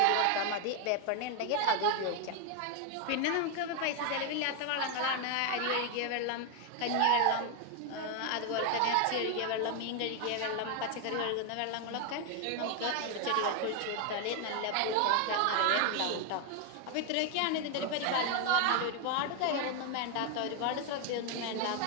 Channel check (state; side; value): different; both; correlation 0.01